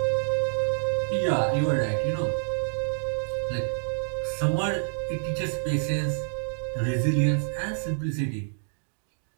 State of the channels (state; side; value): silent; left; digital silence